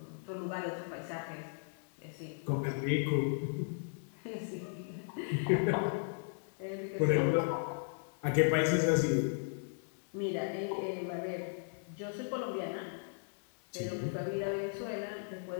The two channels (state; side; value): silent; right; digital silence